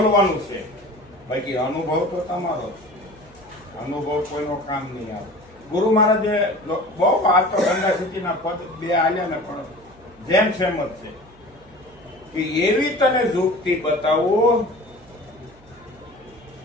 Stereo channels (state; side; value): noise; right; hum, 26 dB below the sound